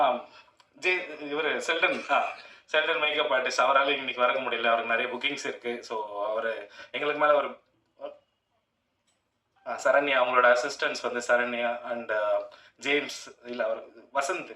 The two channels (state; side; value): identical; both; correlation 1.00